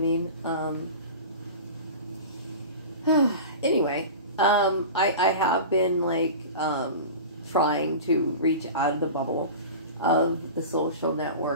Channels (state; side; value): inverted; both; correlation -0.33